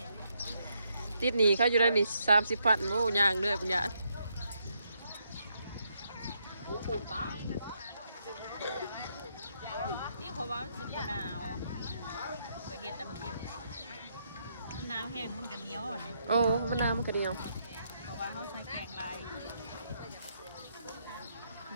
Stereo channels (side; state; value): both; inverted; correlation -0.77